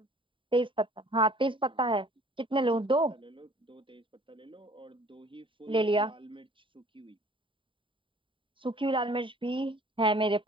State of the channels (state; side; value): late; left; 0.25 ms